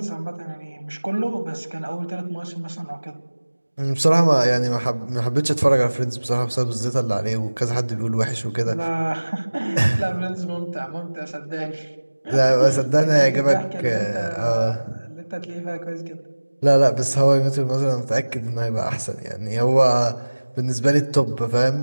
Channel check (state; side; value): inverted; both; correlation -1.00